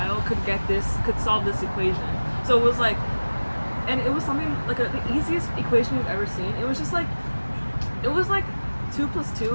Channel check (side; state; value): both; inverted; correlation -1.00